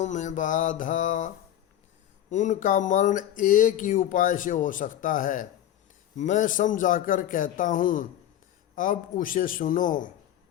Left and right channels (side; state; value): right; quieter; 11.6 dB